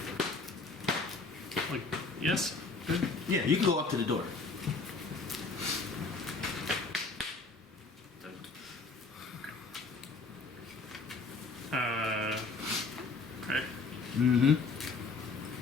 Like, yes? Good. Yeah, you can go up to the door. Okay. Mm-hmm.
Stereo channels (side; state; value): right; quieter; 4.0 dB